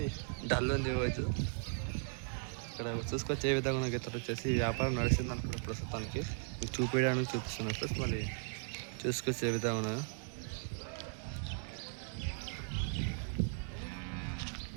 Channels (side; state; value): left; silent; 53 dB below the other